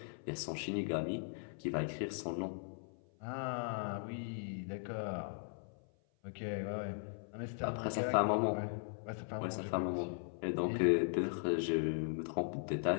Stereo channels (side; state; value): right; silent; 52 dB below the other